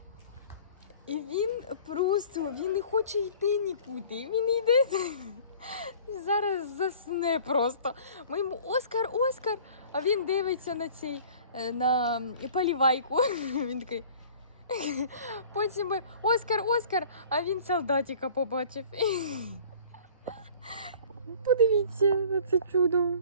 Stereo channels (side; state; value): both; inverted; correlation -0.48